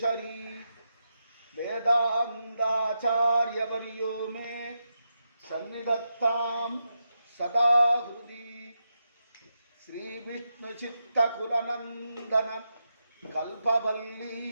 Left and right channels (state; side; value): inverted; both; correlation -0.86